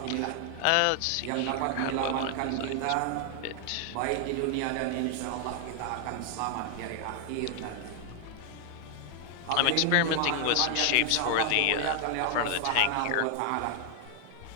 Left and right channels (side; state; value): both; different; correlation 0.00